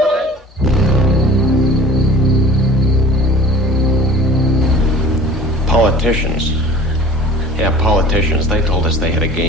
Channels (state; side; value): normal; both; correlation 0.44